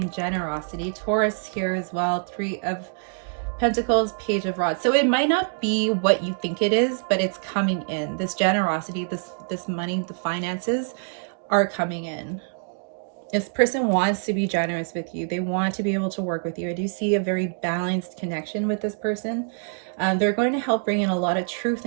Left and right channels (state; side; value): silent; left; 62 dB below the other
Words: generosity. Taurus here as well. Three of Pentacles, Page of Rods. So it might not be what you think it is, but it's coming in. This generosity, this money, the finances are coming in. This person wants to be generous with you. They want to be able to work with you. I do see a very balanced connection with this person. They're going to help bring in a lot of truth